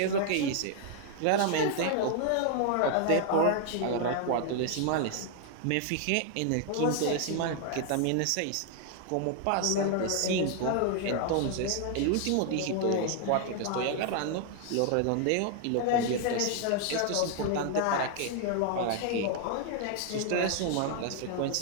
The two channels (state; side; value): different; both; correlation 0.00